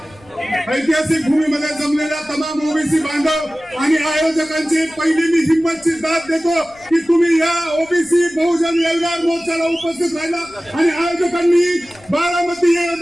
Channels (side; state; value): left; noise; rumble, 27 dB below the sound